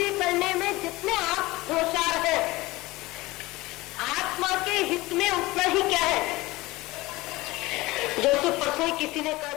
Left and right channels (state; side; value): quieter; right; 20.3 dB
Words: करने में जितने आप होशियार हैं, आत्मा के हित में उतना ही क्या है। जैसे परसों किसी ने कहा